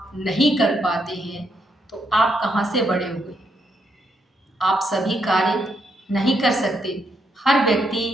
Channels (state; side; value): normal; both; correlation 0.77